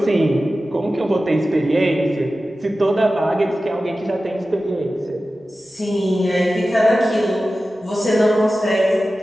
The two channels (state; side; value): normal; both; correlation 0.94